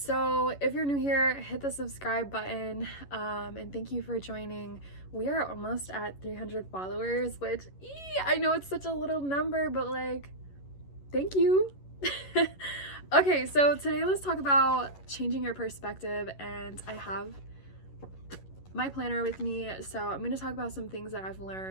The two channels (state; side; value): late; right; 11 ms